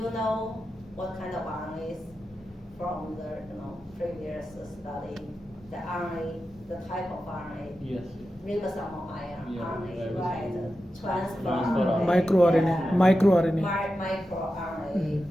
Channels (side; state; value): both; normal; correlation 0.91